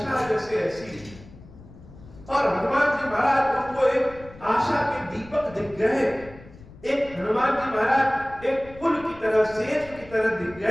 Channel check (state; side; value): noise; left; rumble, 20 dB below the sound